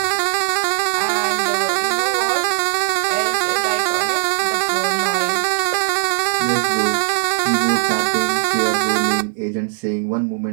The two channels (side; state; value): left; silent; 67 dB below the other